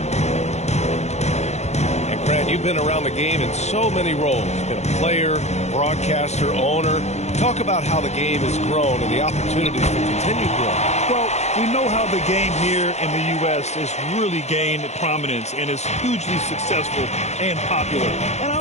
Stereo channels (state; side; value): late; right; 0.32 ms